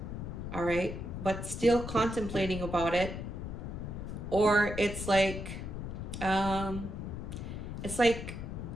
all right, but still contemplating about it. Or it's like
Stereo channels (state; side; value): noise; left; rumble, 6 dB below the sound